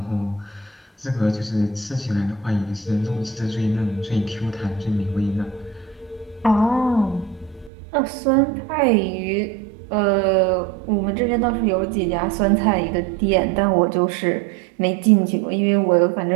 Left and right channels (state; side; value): drops out; left; at 7.7 s